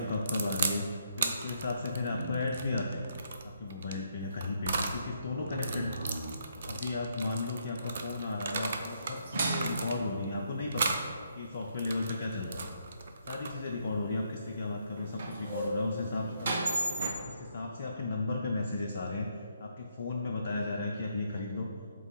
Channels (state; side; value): inverted; both; correlation -0.74